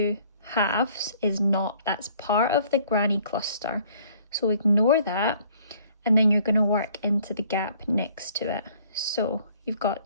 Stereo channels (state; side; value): inverted; both; correlation -0.58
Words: halves is not, that's part of the granny cluster, so ignore that, and then you're going to work into the gap next to it. So you've got